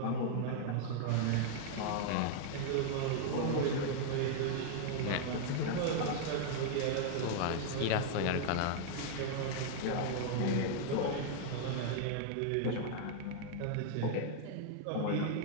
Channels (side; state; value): both; different; correlation -0.01